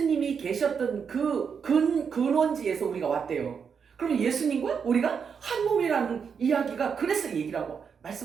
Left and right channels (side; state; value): left; quieter; 6.5 dB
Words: 계셨던 그 근원지에서 우리가 왔대요. 그럼 예수님과 우리가 한 몸이라는 이야기가 그래서 얘기라고